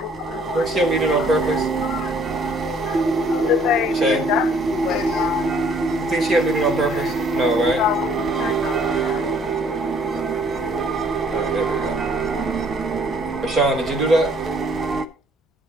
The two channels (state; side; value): normal; both; correlation 0.60